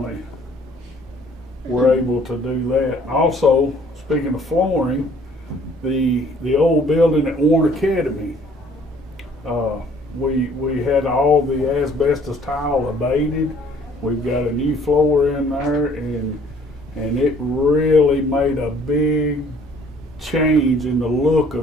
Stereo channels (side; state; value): both; normal; correlation 0.58